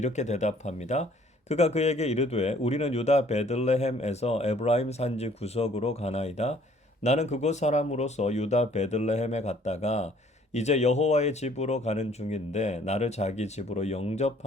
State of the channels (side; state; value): both; normal; correlation 0.58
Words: 대답합니다. 그가 그에게 이르되 우리는 유다 베들레헴에서 에브라임 산지 구석으로 가나이다. 나는 그곳 사람으로서 유다 베들레헴에 갔다가 이제 여호와의 집으로 가는 중인데 나를 자기 집으로